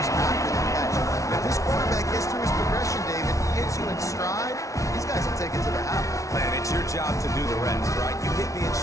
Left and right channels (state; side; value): late; right; 0.16 ms